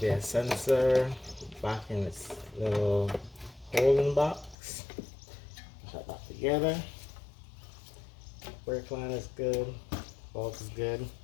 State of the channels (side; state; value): right; drops out; at 4.5 s